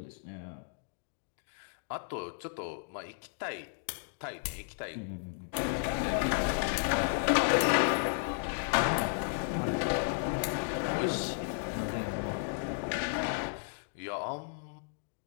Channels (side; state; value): right; silent; digital silence